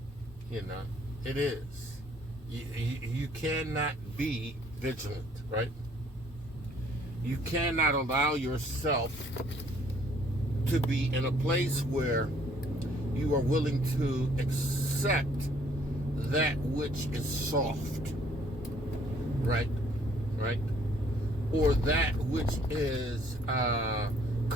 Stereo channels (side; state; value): both; normal; correlation 0.62